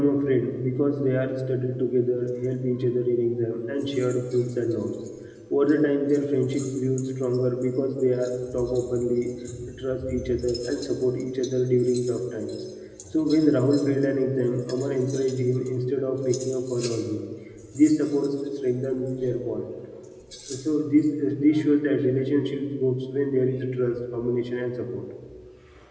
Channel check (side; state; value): both; identical; correlation 1.00